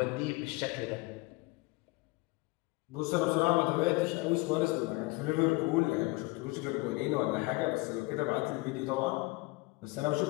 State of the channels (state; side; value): quieter; right; 23.3 dB